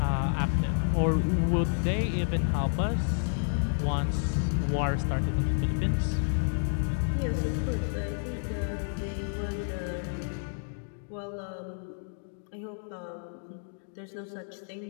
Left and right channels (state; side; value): silent; right; digital silence